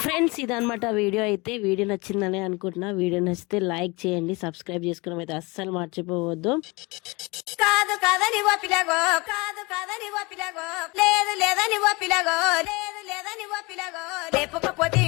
ఫ్రెండ్స్ ఇదనమాట వీడియో అయితే. వీడియో నచ్చిందని అనుకుంటున్నా. వీడియో నచ్చితే లైక్ చేయండి, సబ్స్క్రైబ్ చేసుకోవడం అయితే అస్సలు మర్చిపోవద్దు. కాదు కాదని ఓ పిల్లగో, కాదు కాదని ఓ పిల్లగో, లేదు లేదని ఓ పిల్లగో, లేదు లేదని ఓ పిల్లగో, లేపకపోతే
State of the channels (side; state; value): right; quieter; 25.9 dB